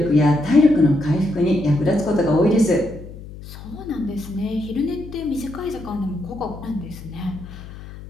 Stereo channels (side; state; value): left; noise; hum, 14 dB below the sound